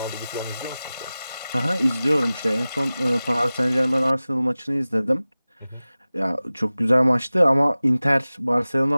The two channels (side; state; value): both; inverted; correlation -0.97